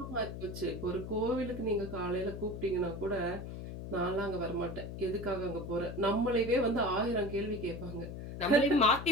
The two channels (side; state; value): left; noise; hum, 8 dB below the sound